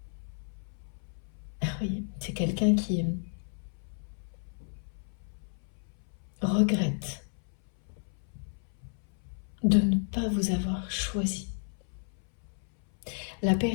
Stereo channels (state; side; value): silent; right; 56 dB below the other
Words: Ah oui, c'est quelqu'un qui regrette de ne pas vous avoir choisi. La